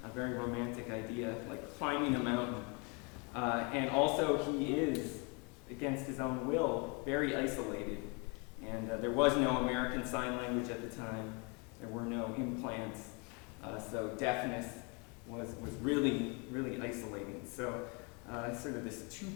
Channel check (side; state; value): right; quieter; 32.2 dB